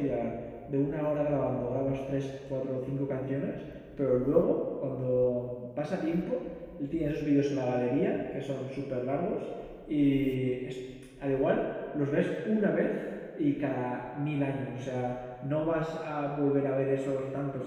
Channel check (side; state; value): both; identical; correlation 1.00